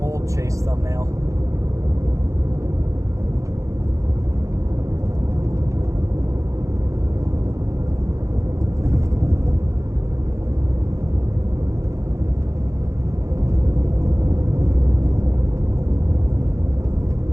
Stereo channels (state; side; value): late; left; 0.15 ms